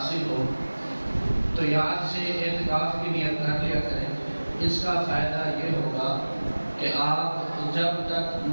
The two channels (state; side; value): inverted; both; correlation -1.00